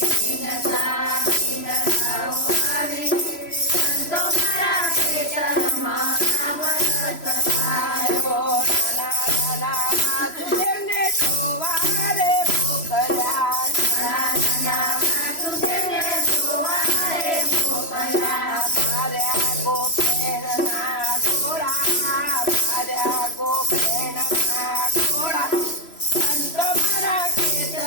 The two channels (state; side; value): late; right; 3.0 ms